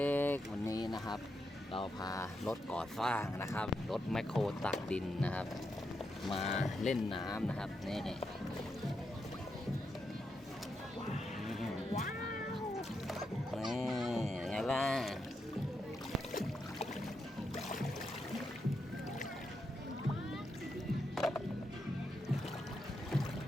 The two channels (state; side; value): normal; both; correlation 0.84